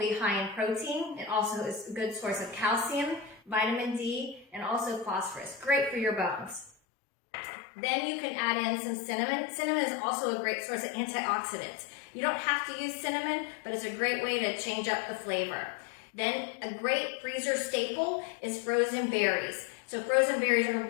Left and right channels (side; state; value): right; drops out; at 6.7 s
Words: high in protein. It also is a good source of calcium, vitamin D, and also phosphorus. Great for your bones. Then you can add in some cinnamon. Cinnamon is also a great source of antioxidants. You don't have to use cinnamon, but it's a great way to change up the flavor. Then a great freezer staple is frozen berries. So frozen berries are